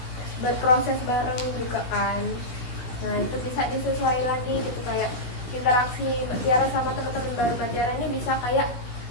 berproses bareng juga kan. Nah, itu bisa disesuaikan lagi gitu, kayak interaksi Mbak Tiara sama teman-teman baru Mbak Tiara ini bisa kayak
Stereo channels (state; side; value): late; right; 16 ms